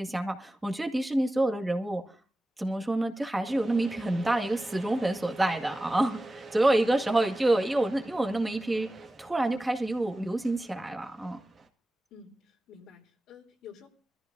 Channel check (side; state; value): both; normal; correlation 0.95